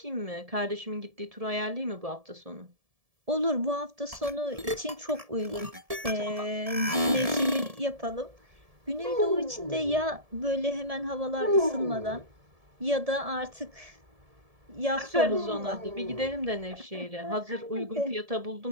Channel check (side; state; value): left; late; 1.7 ms